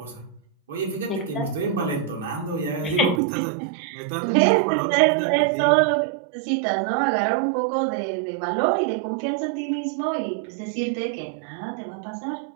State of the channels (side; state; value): left; drops out; at 3.2 s